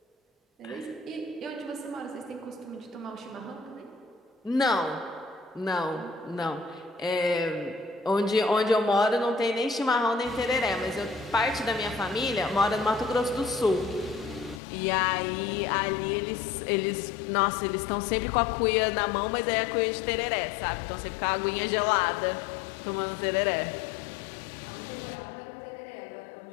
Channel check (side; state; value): right; drops out; at 14.6 s